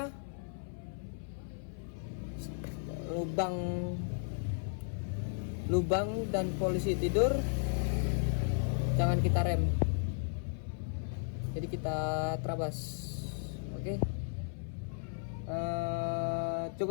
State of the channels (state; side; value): silent; right; 55 dB below the other